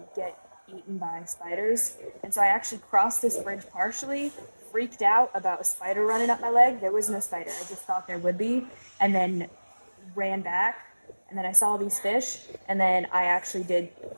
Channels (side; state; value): both; inverted; correlation -1.00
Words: get eaten by spiders. And so I actually crossed this bridge partially freaked out about a spider running up my leg. There was no spider. I just thought there would be, and then ran back. And then I saw these fish, and then I actually did